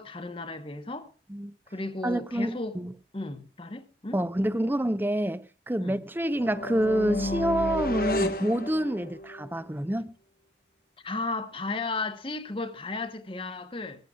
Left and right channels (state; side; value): normal; both; correlation 0.75